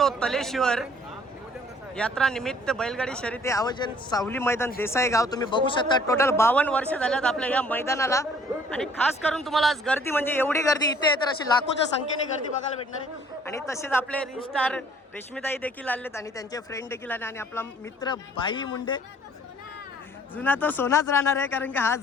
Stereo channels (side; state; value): both; normal; correlation 0.58